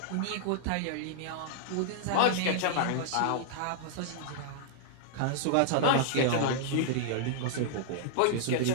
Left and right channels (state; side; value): different; both; correlation -0.01